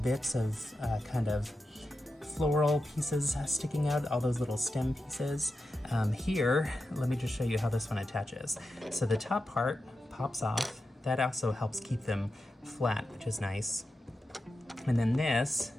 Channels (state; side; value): normal; both; correlation 0.90